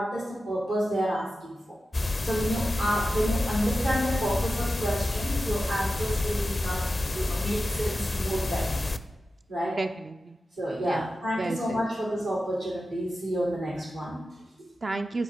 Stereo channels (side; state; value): both; normal; correlation 0.93